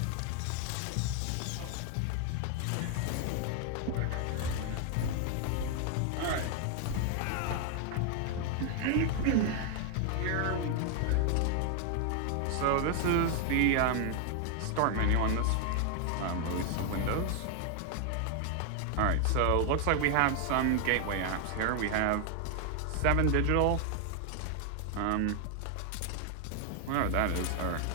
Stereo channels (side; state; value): both; different; correlation 0.00